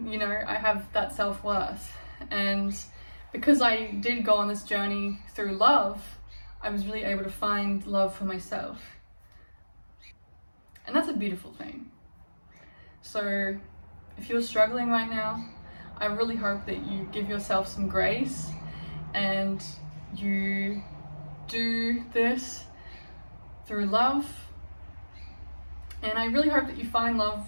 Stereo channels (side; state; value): both; inverted; correlation -1.00